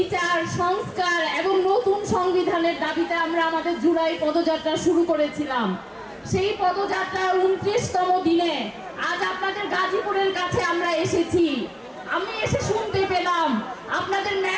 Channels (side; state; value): both; identical; correlation 1.00